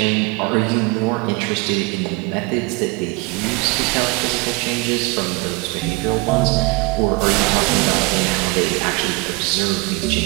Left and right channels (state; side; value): quieter; left; 25.7 dB